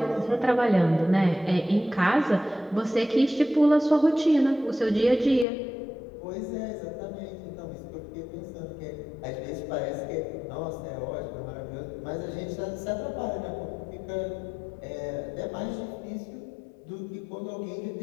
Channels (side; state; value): right; drops out; at 5.5 s